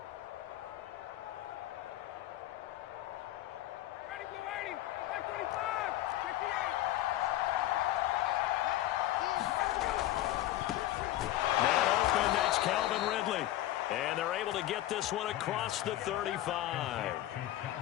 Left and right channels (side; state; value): right; quieter; 14.6 dB